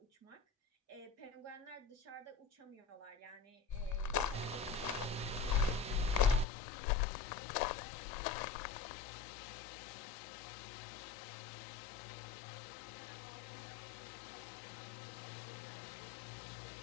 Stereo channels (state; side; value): drops out; right; at 6.5 s